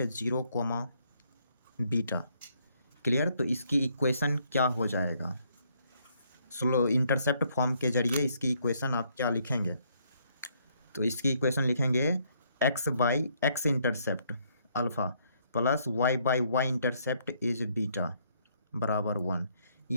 0, बीटा, क्लियर। तो इसकी इक्वेशन क्या हो जाएगा? स्लो इंटरसेप्ट फॉर्म के जरिए इसकी इक्वेशन आप क्या लिखेंगे? तो इसकी इक्वेशन लिखेंगे x/x intercept alpha plus y/y intercept is beta बराबर 1।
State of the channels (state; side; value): inverted; both; correlation -0.69